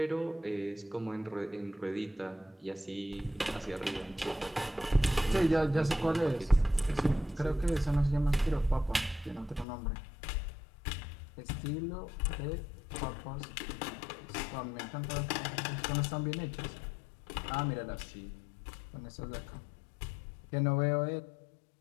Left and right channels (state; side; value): drops out; right; at 9.7 s